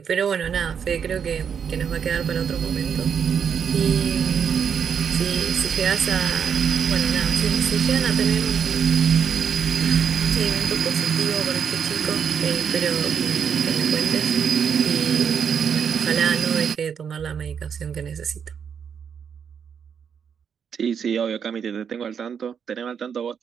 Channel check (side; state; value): left; quieter; 7.3 dB